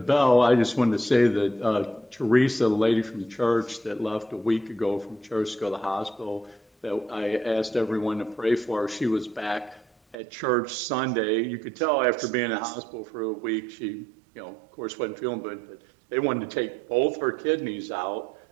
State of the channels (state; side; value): drops out; left; at 10.2 s